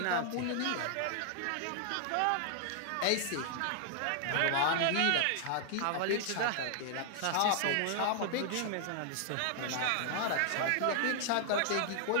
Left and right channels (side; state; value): both; different; correlation 0.00